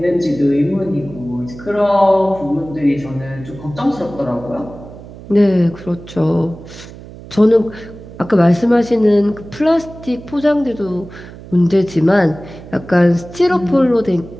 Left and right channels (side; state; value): right; noise; hum, 16 dB below the sound